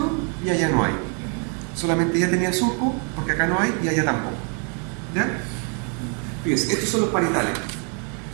y allá no hay. Solamente ella tenía surco, porque acá no hay y allá tampoco. ¿Ya? Fíjense, estos son los parietales.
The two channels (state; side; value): quieter; left; 39.1 dB